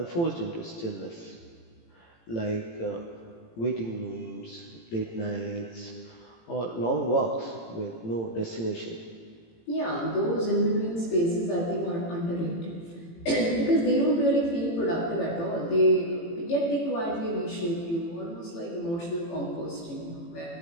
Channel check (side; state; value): right; late; 18 ms